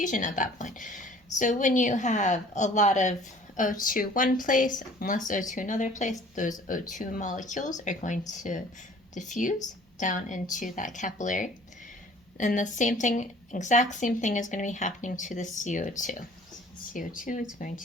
at that point. So when you have a lot of O2 one place and less O2 another place, those O2 molecules are going to diffuse down into that capillary. And the same thing, exact same thing is going to be happening to the CO2. CO2 is going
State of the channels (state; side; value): normal; both; correlation 0.51